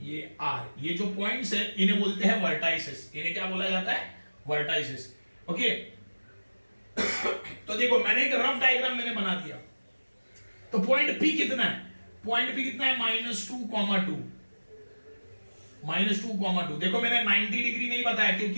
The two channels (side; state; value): both; inverted; correlation -1.00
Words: ये R, ये जो पॉइंट्स है इन्हें बोलते हैं वर्टाइसेस। इन्हें क्या बोला जाता है, वर्टाइसेस। ओके तो देखो मैंने एक रफ डायग्राम मैंने बना दिया, तो पॉइंट P कितना है, पॉइंट P कितना है -2,2 -2,2। देखो मैंने 90 डिग्री नहीं बताया